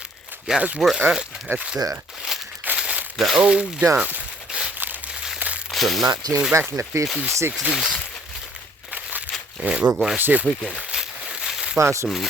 Guys, we're up at the old dump from back in the 50s, 60s. And we're going to see if we can find some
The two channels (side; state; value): both; normal; correlation 0.58